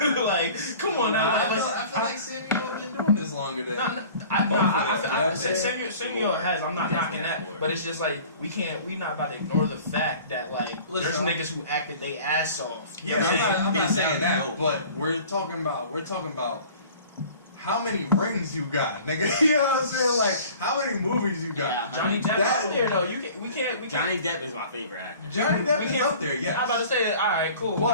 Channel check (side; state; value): both; inverted; correlation -0.46